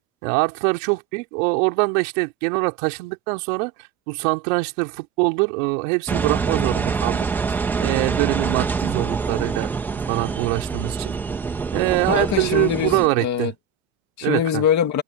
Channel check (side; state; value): left; quieter; 6.5 dB